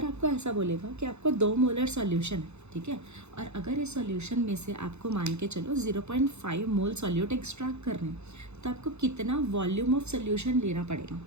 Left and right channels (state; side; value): late; left; 0.81 ms